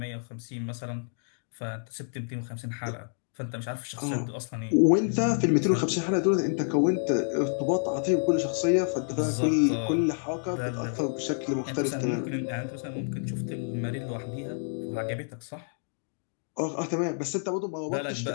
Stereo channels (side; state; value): right; silent; digital silence